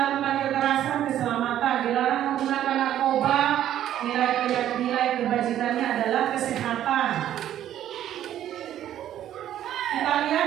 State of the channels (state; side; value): quieter; left; 11.5 dB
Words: kekerasan, keselamatan, dilarang menggunakan narkoba, nilai kebajikannya adalah kesehatan. Kita